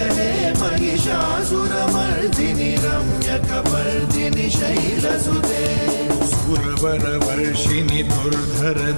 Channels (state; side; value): inverted; both; correlation -1.00